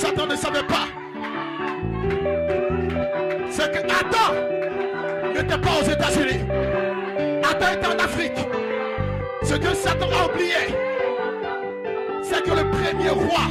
ne savait pas, c'est que Adam n'était pas aux États-Unis. Adam était en Afrique. Ce que Satan a oublié, c'est que le premier roi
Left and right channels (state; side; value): identical; both; correlation 1.00